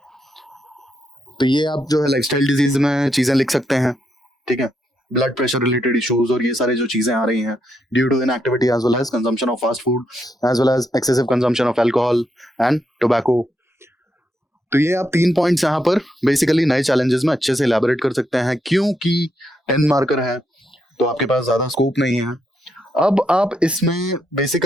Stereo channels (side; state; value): both; normal; correlation 0.80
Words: तो ये आप जो है लाइफस्टाइल डिजीज में चीजें लिख सकते हैं. ठीक है, ब्लड प्रेशर रिलेटेड इश्यूज और ये सारे जो चीजें आ रही हैं due to inactivity as well as consumption of fast food as well as excessive consumption of alcohol and tobacco. तो ये आप 3 पॉइंट्स यहाँ पर बेसिकली नए चैलेंजेस में अच्छे से इलैबोरेट कर सकते हैं, क्योंकि 10 मार्कर है, तो आपके पास ज्यादा स्कोप नहीं है। अब आप इसमें